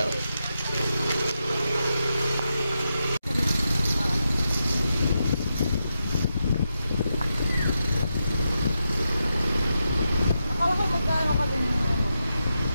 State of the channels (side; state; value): both; inverted; correlation -0.87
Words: Akala ko magkano ka din